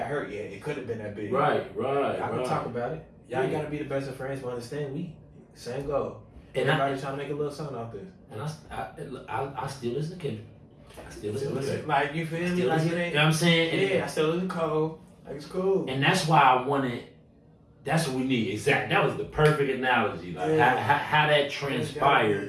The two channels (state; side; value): identical; both; correlation 1.00